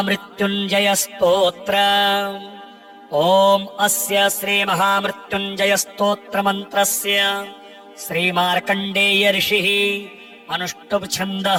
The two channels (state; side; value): identical; both; correlation 1.00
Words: स्तोत्र। ॐ अस्य श्री महामृत्युञ्जय स्तोत्र मंत्रस्य श्री मार्कण्डेय ऋषिः अनुष्टुप्